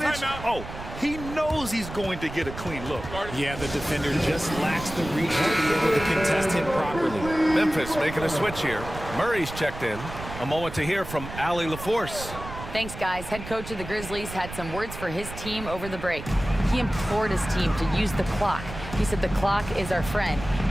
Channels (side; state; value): right; noise; rumble, 11 dB below the sound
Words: he knows he's going to get a clean look. Yeah, the defender just lacks the reach to be able to contest him properly. Memphis making a switch here. Murray's checked in. A moment to hear from Allie LaForce. Thanks, guys. Head coach of the Grizzlies had some words for his team over the break. He implored his team to use the clock. He said the clock is our friend.